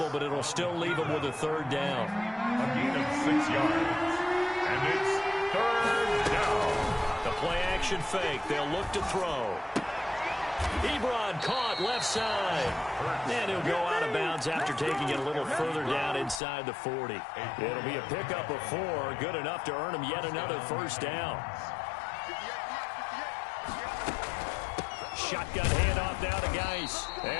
but it'll still leave him with a third down. A gain of 6 yards. And it's third down. The play action fake. They'll look to throw. Ebron caught left side. And he'll go out of bounds after taking it a little further down inside the 40. It'll be a pickup of 4. Good enough to earn him yet another first down. Shotgun handoff now to Geis.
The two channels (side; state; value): right; drops out; at 16.4 s